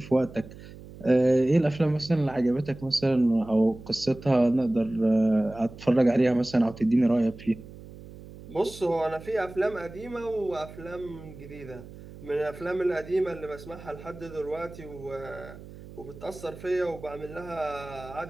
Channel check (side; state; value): right; noise; hum, 16 dB below the sound